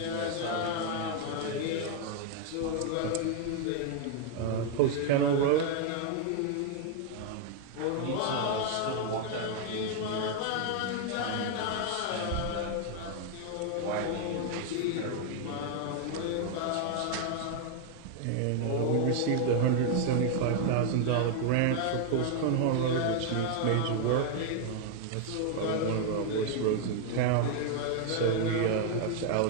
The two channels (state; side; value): different; both; correlation 0.00